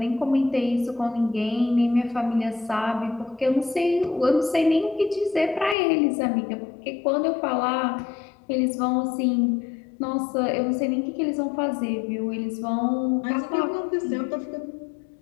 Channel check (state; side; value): drops out; right; at 5.8 s